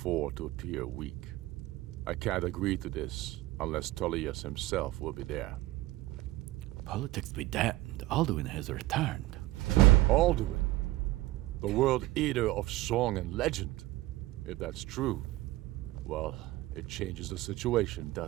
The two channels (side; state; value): left; quieter; 17.8 dB